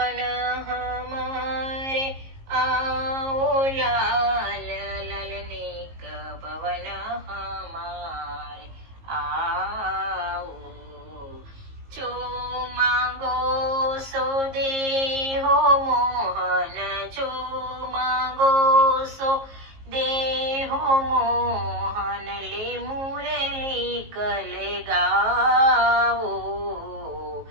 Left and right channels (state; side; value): late; left; 19 ms